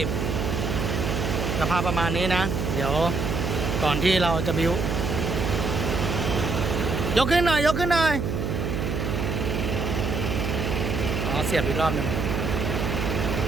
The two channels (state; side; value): noise; right; hum, 2 dB below the sound